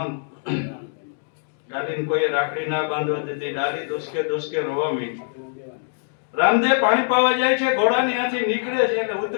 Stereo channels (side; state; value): right; silent; 57 dB below the other